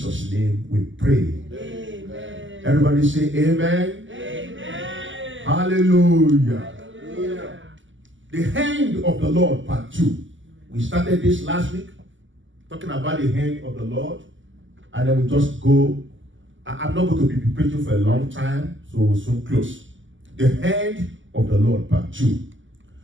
name we pray. Amen. Everybody say amen. Amen. Hallelujah. Hallelujah. The hand of the Lord, part 2. We started this last week, talking about the hand of the Lord. And then we just go. I'm not going to be preaching for a long time, so we'll soon close. The hand of the Lord, part 2.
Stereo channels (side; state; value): left; late; 0.55 ms